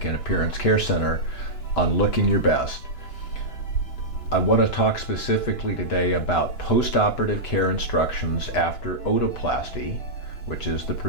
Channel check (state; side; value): late; right; 2.9 ms